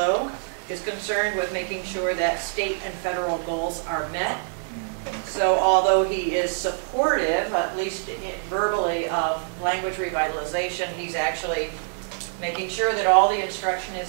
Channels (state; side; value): silent; left; 62 dB below the other